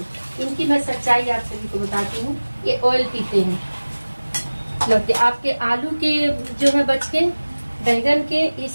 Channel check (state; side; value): inverted; both; correlation -1.00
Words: इनकी मैं सच्चाई आप सभी को बताती हूँ। ये ऑयल पीते हैं लौकी। आपके आलू के जो है बचके, बैंगन के ये